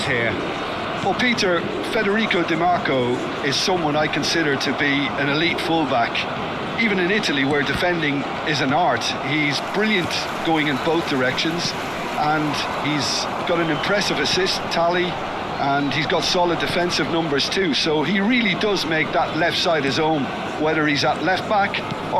here? Well, Peter, Federico Di Marco is someone I consider to be an elite fullback. Even in Italy, where defending is an art, he's brilliant going in both directions, and he's got an impressive assist tally, and he's got solid defensive numbers too, so he really does make that left side his own, whether he's at left back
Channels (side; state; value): both; identical; correlation 1.00